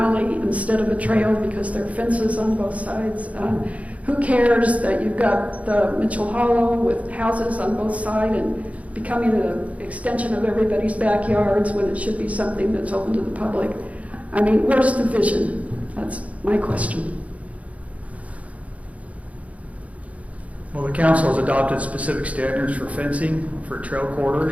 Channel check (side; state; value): left; late; 0.067 ms